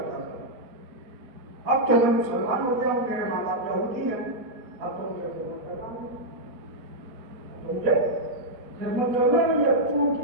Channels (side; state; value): left; late; 4.4 ms